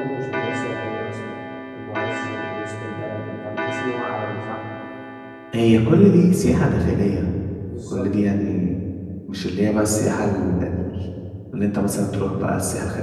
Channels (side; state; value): both; identical; correlation 1.00